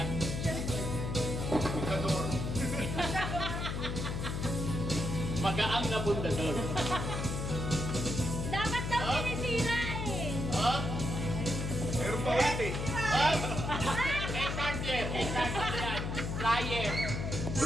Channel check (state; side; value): noise; left; hum, 3 dB below the sound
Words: Pundador. Magaang na pundador. Dapat daw sinisira eh. Oh? Meron pa ulit eh. Oh? May charger. Yan. Flyer.